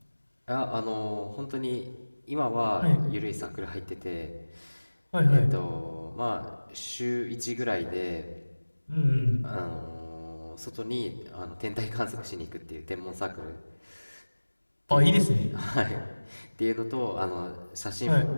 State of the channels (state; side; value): inverted; both; correlation -1.00